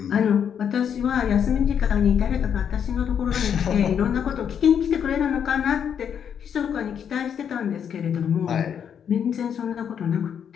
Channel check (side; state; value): right; quieter; 8.1 dB